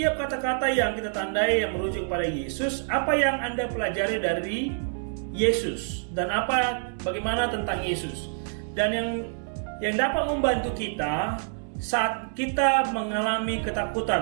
kata-kata yang kita tandai yang merujuk pada Yesus. Apa yang Anda pelajari dari Yesus dan bagaimana tentang Yesus? Dan yang dapat membantu kita saat kita mengalami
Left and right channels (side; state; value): left; silent; digital silence